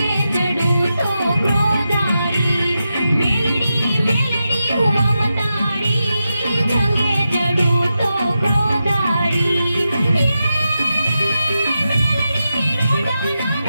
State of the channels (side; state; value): both; inverted; correlation -0.89